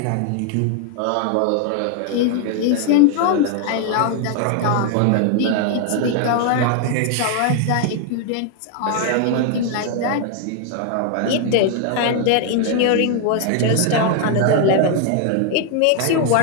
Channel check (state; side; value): different; both; correlation 0.00